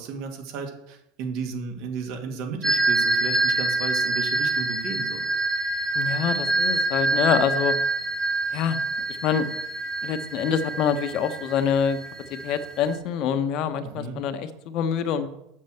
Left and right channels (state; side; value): normal; both; correlation 0.59